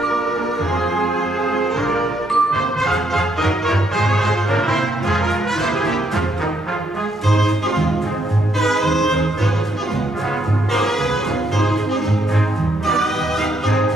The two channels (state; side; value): normal; both; correlation 0.74